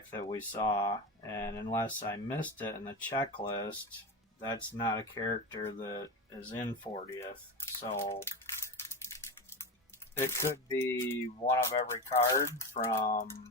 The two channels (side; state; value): both; normal; correlation 0.22